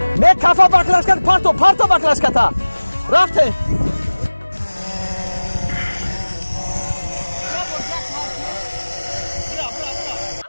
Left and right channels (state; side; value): inverted; both; correlation -1.00